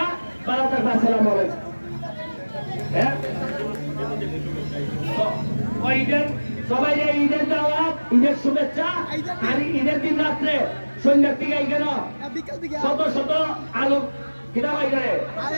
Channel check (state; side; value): inverted; both; correlation -1.00